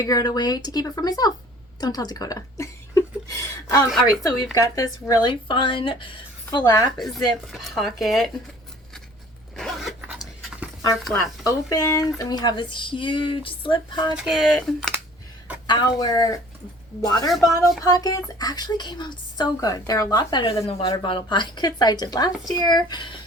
out a way to keep it for myself. Don't tell Dakota. All right, so we've got this really fun flap zip pocket. Our flap opens, and we have this huge slip pocket. Our water bottle pockets actually came out so good. They're a lot better than the water bottle pockets I did last year.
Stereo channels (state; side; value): normal; both; correlation 0.51